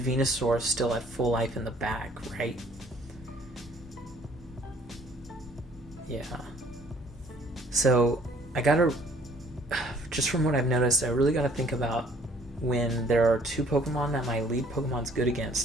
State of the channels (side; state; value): both; normal; correlation 0.58